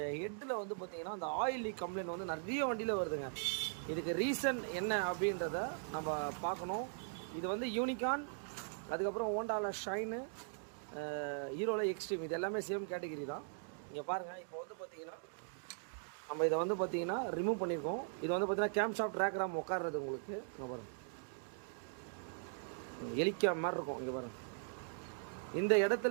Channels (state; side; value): silent; left; digital silence